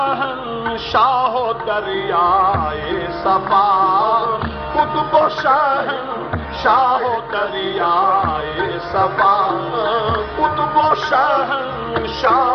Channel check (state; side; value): identical; both; correlation 1.00